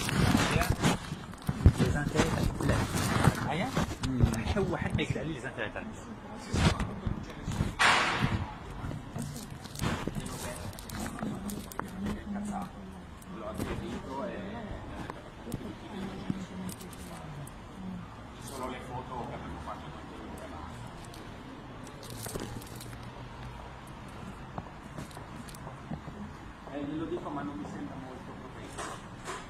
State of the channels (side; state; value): both; identical; correlation 1.00